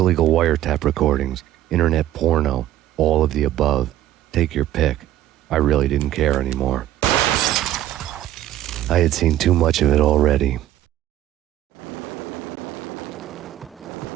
wiretap recordings, internet porno, all of the above. Take your pick. I really didn't care anymore. I had seen too much of it already.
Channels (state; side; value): quieter; left; 13.3 dB